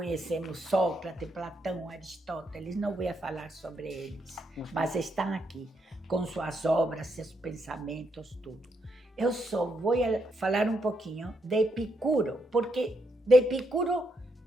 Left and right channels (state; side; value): normal; both; correlation 0.78